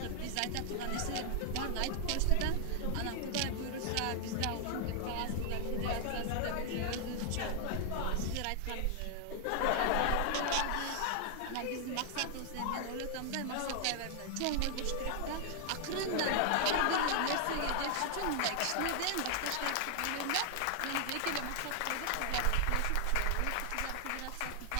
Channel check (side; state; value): both; different; correlation 0.00